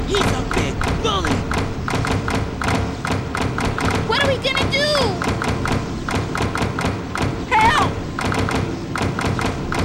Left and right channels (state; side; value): identical; both; correlation 1.00